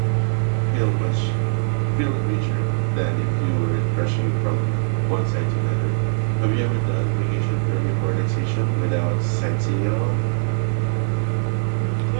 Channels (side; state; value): left; silent; digital silence